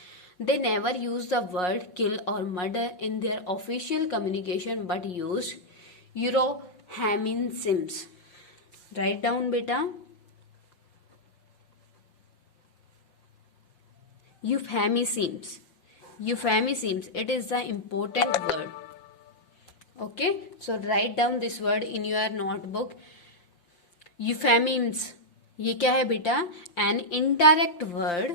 They never used the word kill or murder in their official communication but used euphemisms. Write down beta. Euphemisms. Euphemisms. It is the important word. Okay, so write down this word in your notebook. Euphemisms, ये क्या है बेटा? An indirect word.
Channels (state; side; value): late; right; 5.6 ms